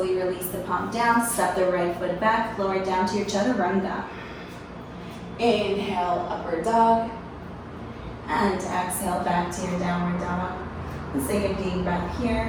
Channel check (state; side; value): identical; both; correlation 1.00